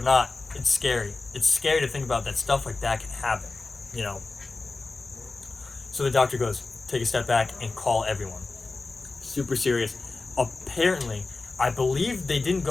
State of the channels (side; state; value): right; quieter; 3.6 dB